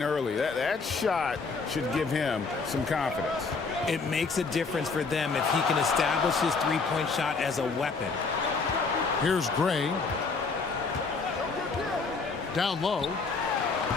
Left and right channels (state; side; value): quieter; right; 4.4 dB